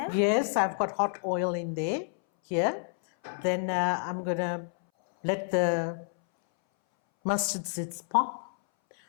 Yes, I've got hot oil in there, here. Then I'm going to let the mustard seeds pop.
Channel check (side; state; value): right; silent; 59 dB below the other